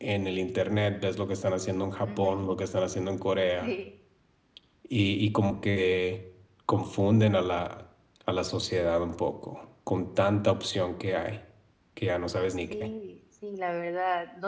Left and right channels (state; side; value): identical; both; correlation 1.00